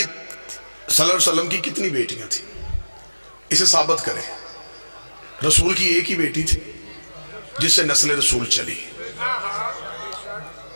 صلی اللہ علیہ وسلم کی کتنی بیٹیاں تھیں؟ اسے ثابت کریں. رسول کی ایک ہی بیٹی تھی جس سے نسل رسول چلی.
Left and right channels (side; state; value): both; inverted; correlation -1.00